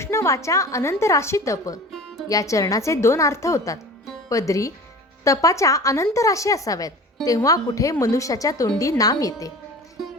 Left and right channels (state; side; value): normal; both; correlation 0.38